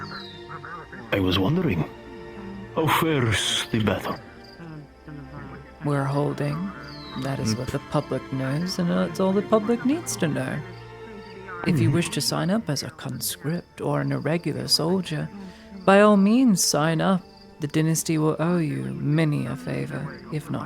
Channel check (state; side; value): identical; both; correlation 1.00